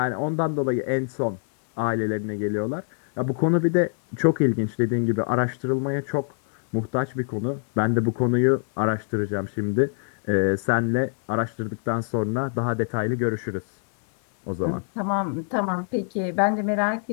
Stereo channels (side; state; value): right; silent; digital silence